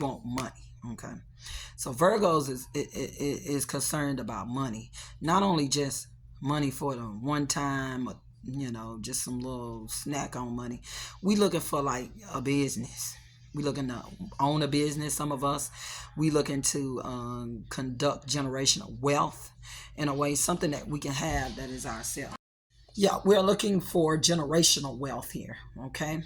money. Okay. So Virgos is concerned about money, not only just money for the one time, just some little snack on money. We looking for like a business. We looking to own a business. Some of us, we looking to conduct generational wealth in a way, something that we can have that is ourselves. Yeah, we're looking for generational wealth here. Okay,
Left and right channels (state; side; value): identical; both; correlation 1.00